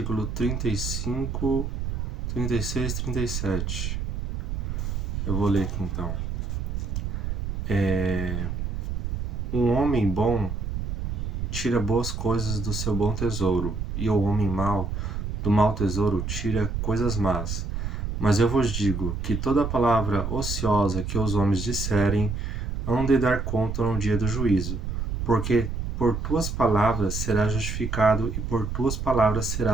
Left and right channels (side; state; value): right; noise; rumble, 3 dB below the sound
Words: 35, 36 e 37. Eu vou ler aqui então. Um homem bom tira boas coisas do seu bom tesouro, e o homem mau do mau tesouro tira coisas más. Mas eu vos digo que toda palavra ociosa que os homens disserem, hão de dar conta no dia do juízo, porque por tuas palavras serás justificado e por tuas palavras